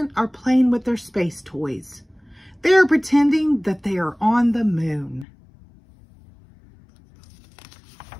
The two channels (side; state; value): right; drops out; at 5.2 s